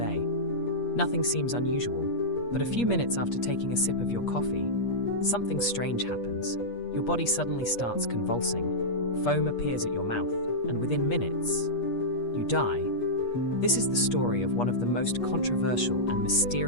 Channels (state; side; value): late; right; 8.4 ms